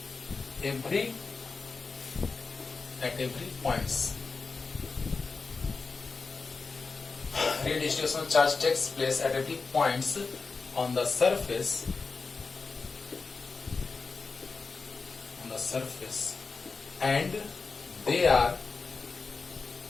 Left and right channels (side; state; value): right; quieter; 4.4 dB